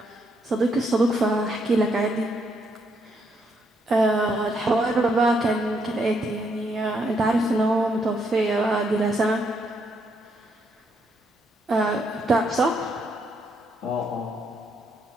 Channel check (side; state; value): both; normal; correlation 0.75